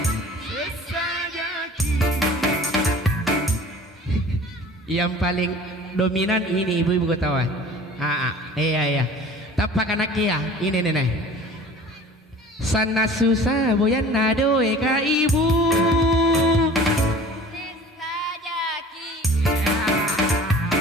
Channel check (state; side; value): normal; both; correlation 0.45